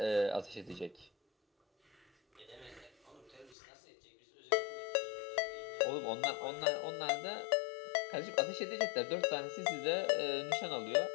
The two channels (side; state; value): right; drops out; at 3.6 s